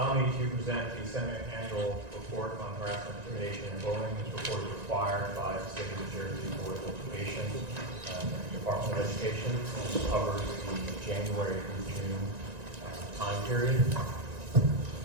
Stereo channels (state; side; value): late; left; 1.9 ms